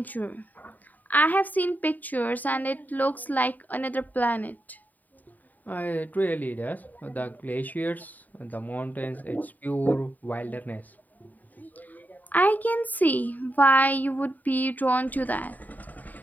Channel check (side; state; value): right; late; 0.083 ms